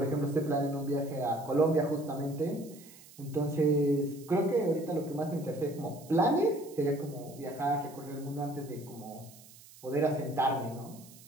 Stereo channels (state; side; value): noise; right; hiss, 21 dB below the sound